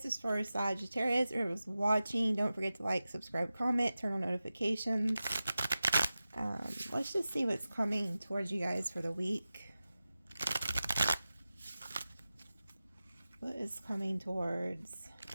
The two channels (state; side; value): inverted; both; correlation -0.95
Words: is for Sagittarius. Whoever's watching, don't forget to like, subscribe, comment, turn on notifications. Let's just see what's coming towards you guys for the week. What is coming towards